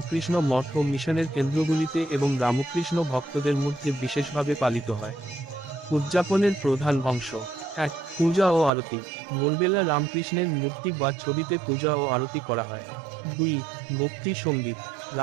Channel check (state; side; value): drops out; left; at 8.7 s